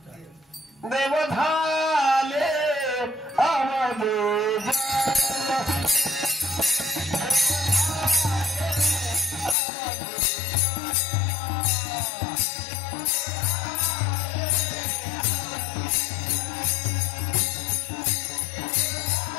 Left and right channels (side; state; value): right; drops out; at 9.6 s